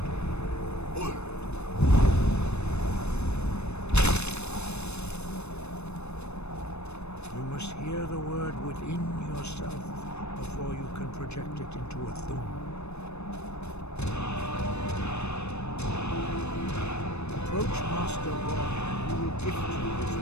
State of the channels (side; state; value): right; late; 0.81 ms